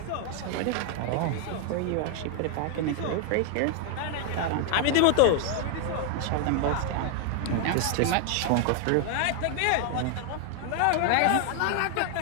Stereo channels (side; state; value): both; different; correlation 0.00